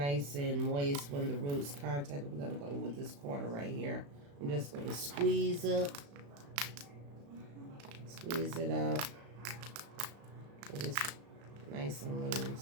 and moist when the roots contact. We're gonna go with this corner right here. I'm just gonna squeeze it up. It is nice and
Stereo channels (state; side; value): late; left; 35 ms